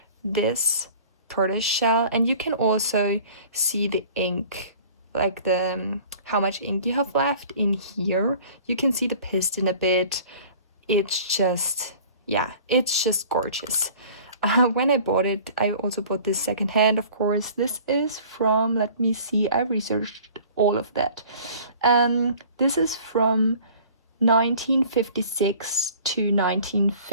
this tortoise shell, and you can also see the ink, like the how much ink you have left in here. You can see the piston a bit. It's just, yeah, it's just gorgeous. When I bought it, I also bought this secondhand, of course. This is from, let me see, I researched all of that. This is from 1956 to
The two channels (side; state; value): both; inverted; correlation -0.47